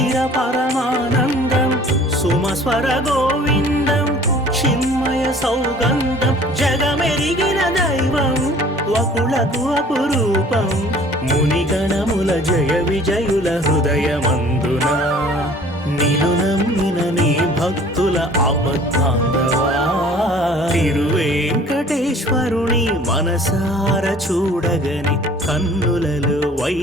పరమానందం, సుమస్వర గోవిందం చిన్మయ సౌగంధం జగమెరిగిన దైవం వకులకు అపురూపం మునిగణముల జయ విజయుల హృదయమందున నిలునమ్మిన నీ భక్తుల ఆపద్బాంధవా తిరువేంకటేశ్వరుని మనసార చూడగని కన్నులలో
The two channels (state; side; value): normal; both; correlation 0.51